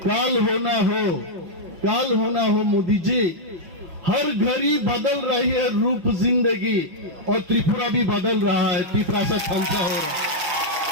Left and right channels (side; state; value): left; late; 6.0 ms